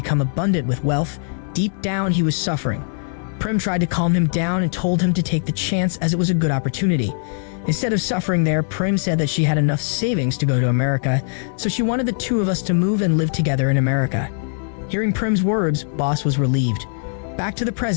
abundant with wealth, deep down he was suffering. Prim tried to calm him down and told him to take the chance as it was a good opportunity. Instead of suffering there, Prim said that she had enough savings to go to America, so she wanted the two of us to move and live together in America. Hearing Prim's words, Boss was relieved. Back to the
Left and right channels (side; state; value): right; silent; digital silence